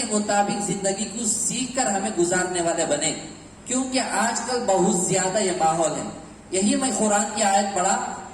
مطابق زندگی کو سیکھ کر ہمیں گزارنے والے بنے. کیونکہ آج کل بہت زیادہ یہ ماحول ہے. یہی میں قرآن کی آیت پڑھا,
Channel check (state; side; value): identical; both; correlation 1.00